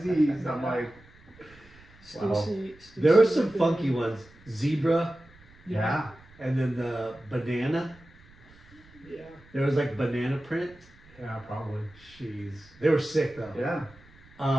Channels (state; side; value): noise; right; rumble, 26 dB below the sound